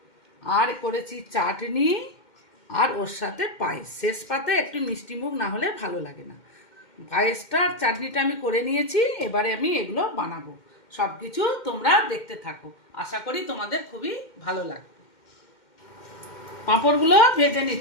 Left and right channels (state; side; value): late; right; 2.1 ms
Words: আর করেছি চাটনি, আর ওর সাথে পায়েস। শেষ পাতে একটু মিষ্টি মুখ না হলে ভালো লাগে না। পায়েসটা আর চাটনিটা আমি করে নিয়েছি, এবারে আমি এগুলো বানাবো। সব কিছু তোমরা দেখতে থাকো, আশা করি তোমাদের খুবই ভালো লাগবে। পাঁপড়গুলো ভেজে